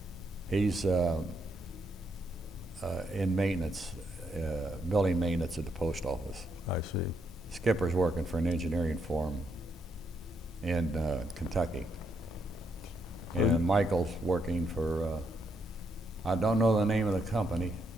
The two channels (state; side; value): normal; both; correlation 0.77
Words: He's in maintenance, building maintenance at the post office. I see. Skipper's working for an engineering firm in Kentucky. And Michael's working for, I don't know the name of the company,